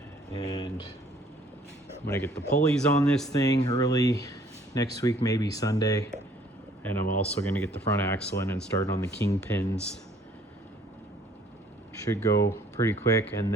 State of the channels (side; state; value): both; normal; correlation 0.59